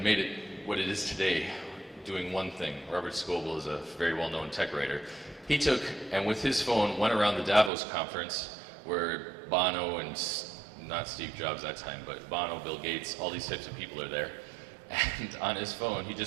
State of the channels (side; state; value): left; drops out; at 7.7 s